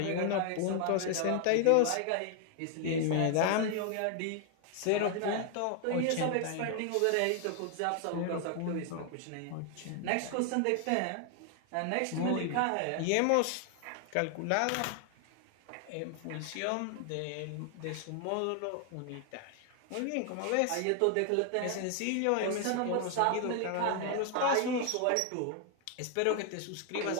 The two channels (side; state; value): both; different; correlation 0.00